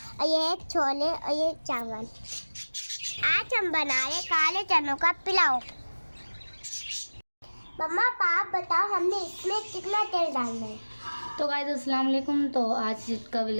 ये है छोले और ये चावल। आज हम बना रहे काले चनों का पुलाव। मम्मा आप बताओ हमने इसमें कितना तेल डालना है? तो गाइस अस्सलाम वालेकुम। तो आज का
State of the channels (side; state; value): both; inverted; correlation -1.00